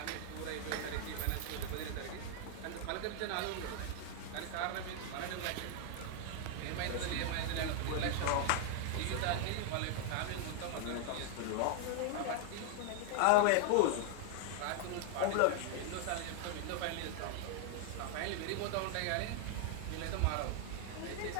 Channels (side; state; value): both; different; correlation 0.00